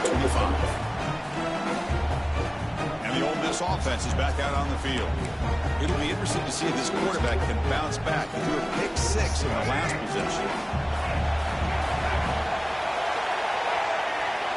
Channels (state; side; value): identical; both; correlation 1.00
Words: the 25. And the Ole Miss offense is back out on the field. It'll be interesting to see if this quarterback can bounce back. He threw a pick-6 in the last possession.